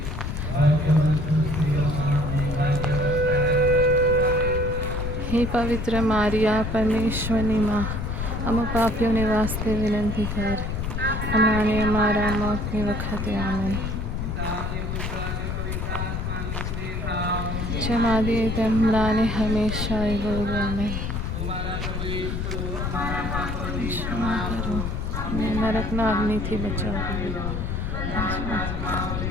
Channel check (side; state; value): left; noise; rumble, 3 dB below the sound